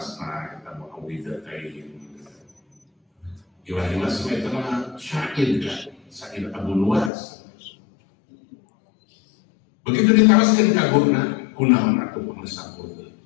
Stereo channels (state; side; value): drops out; right; at 7.1 s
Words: kita mau awidatain Ibrahim Asma itu mah syair kan syair Abu Nuwas begitu diteruskan ke gurna kunaon atuh pengesapur